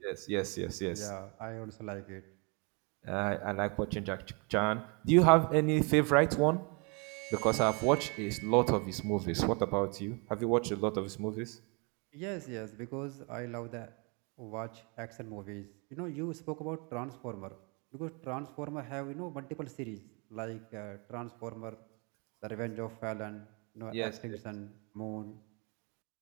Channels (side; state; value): left; quieter; 32.6 dB